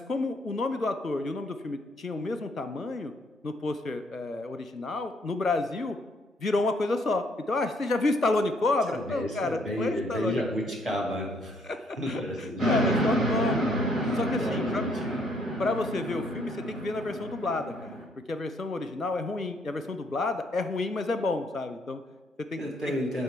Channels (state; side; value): normal; both; correlation 0.68